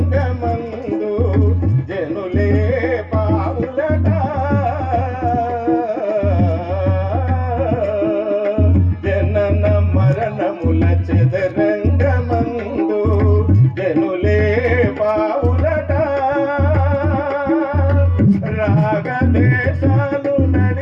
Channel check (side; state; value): both; identical; correlation 1.00